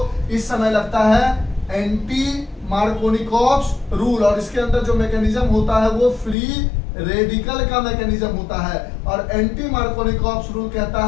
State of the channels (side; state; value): right; drops out; at 6.4 s